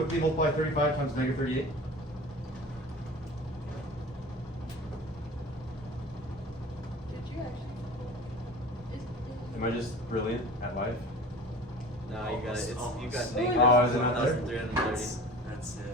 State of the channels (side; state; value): both; normal; correlation 0.38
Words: multiply 35 times negative 38? Did you actually? Am I just brilliant at life? No, you got it. It's you got Almost. negative Oh, is it not there? 1,330. That's